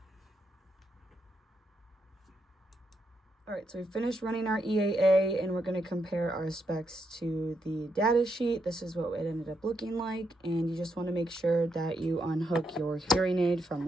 All right, so we finished running our EAA, and we're gonna compare our specs to the data sheet. This is what it ended up looking like, and you just wanna make sure that you unhook your hearing aid from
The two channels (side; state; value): both; normal; correlation 0.80